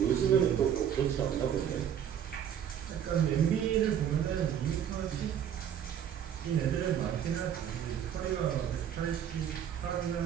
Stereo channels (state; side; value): quieter; left; 9.2 dB